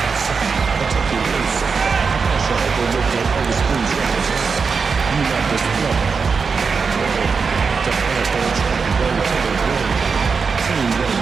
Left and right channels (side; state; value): left; quieter; 5.2 dB